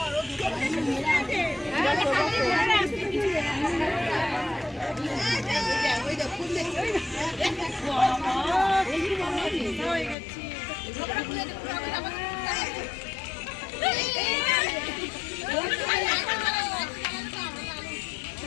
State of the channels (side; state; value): right; drops out; at 10.2 s